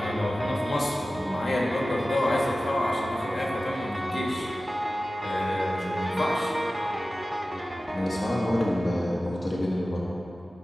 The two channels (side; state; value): both; normal; correlation 0.96